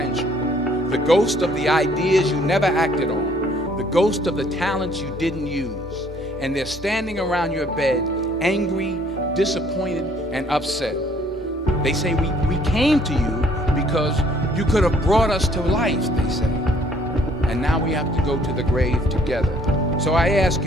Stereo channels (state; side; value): normal; both; correlation 0.62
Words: The ghost of the ideas you never acted on. The ghost of the talents you didn't use. And they're standing around your bed, angry, disappointed, and upset. They say, we came to you because you could have brought us to life, they say. And now we have to go to the grave together. So I ask